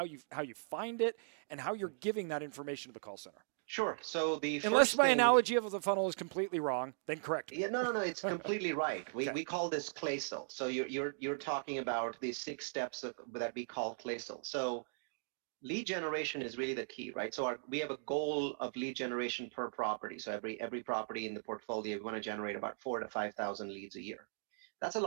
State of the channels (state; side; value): silent; left; digital silence